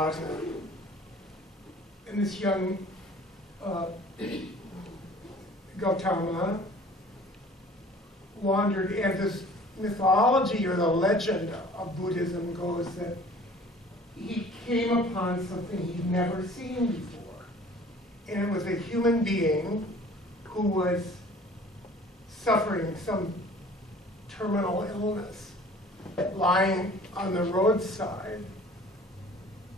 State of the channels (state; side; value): normal; both; correlation 0.49